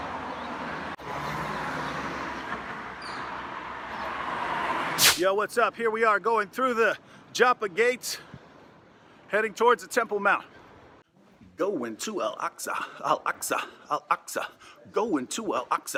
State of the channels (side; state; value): both; identical; correlation 1.00